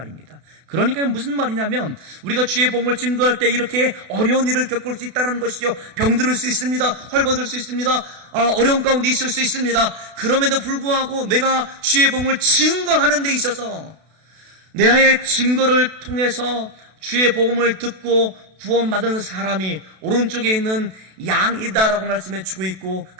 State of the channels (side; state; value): left; late; 32 ms